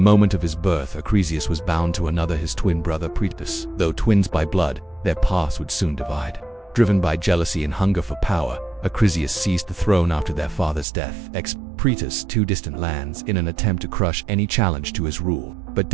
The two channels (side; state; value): left; drops out; at 10.9 s